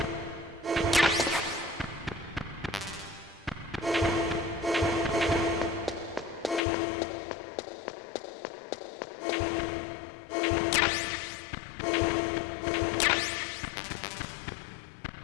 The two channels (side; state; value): right; drops out; at 6.6 s